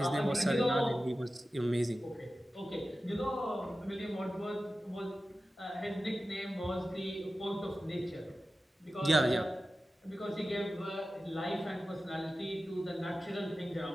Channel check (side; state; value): both; normal; correlation 0.94